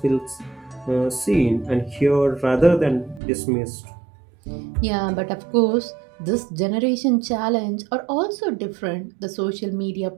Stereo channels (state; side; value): drops out; left; at 3.2 s